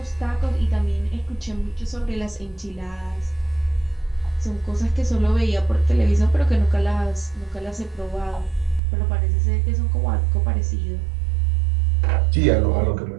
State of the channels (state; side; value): drops out; left; at 8.8 s